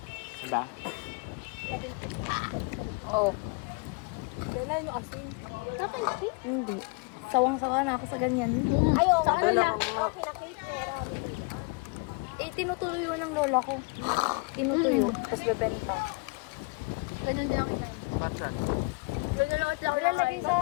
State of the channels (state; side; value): quieter; right; 29.9 dB